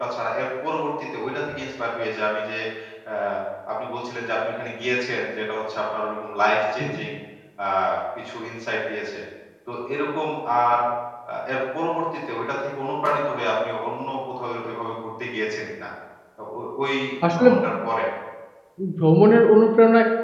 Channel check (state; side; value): identical; both; correlation 1.00